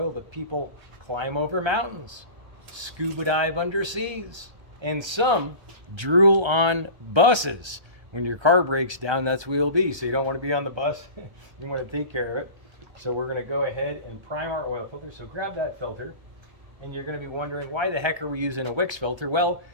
that people climb over mountains, scuba dive under seas, and some drool on buses. When your car breaks down, that's where you'll be. So you don't want to be on the bus. You want to take care of it. So we're going to go ahead and prime our oil filter. So grab that filter. And you're going to be wondering, why the heck are we using a Wix filter? Well,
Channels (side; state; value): left; late; 1.3 ms